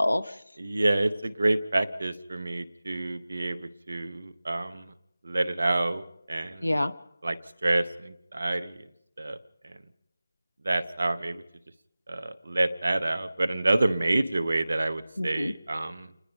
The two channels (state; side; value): inverted; both; correlation -0.97